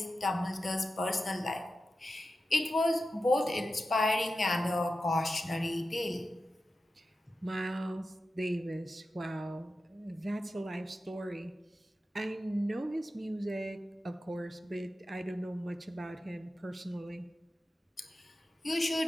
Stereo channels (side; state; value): both; normal; correlation 0.92